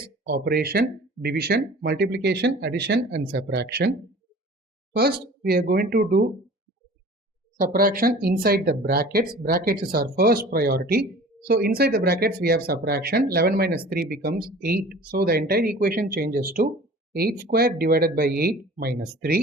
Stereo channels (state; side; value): normal; both; correlation 0.44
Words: operation, division, multiplication, addition and subtraction. First, we are going to do subtraction inside the brackets. Brackets is our first priority. So inside the brackets we have subtraction. 11 minus 3 becomes 8. So the entire equation changes to 8 square divided by 8 minus